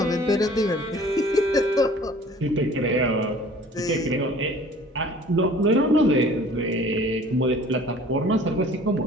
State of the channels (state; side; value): normal; both; correlation 0.49